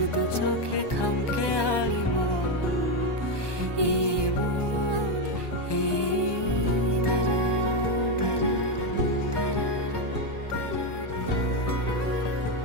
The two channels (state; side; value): late; right; 1.2 ms